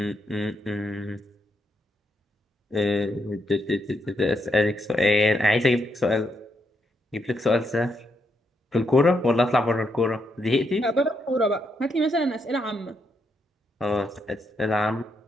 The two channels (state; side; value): normal; both; correlation 0.79